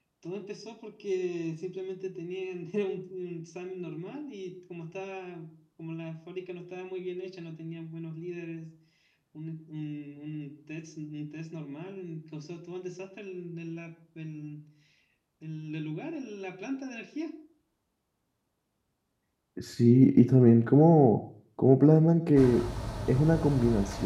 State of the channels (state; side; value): identical; both; correlation 1.00